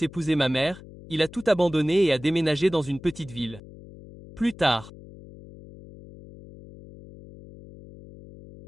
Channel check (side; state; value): left; noise; hum, 18 dB below the sound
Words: épouser ma mère, il a tout abandonné et a déménagé dans une petite ville. Plus tard,